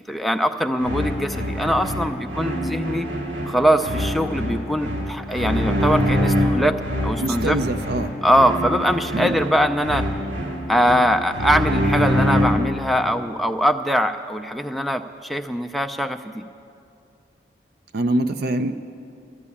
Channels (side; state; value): both; normal; correlation 0.81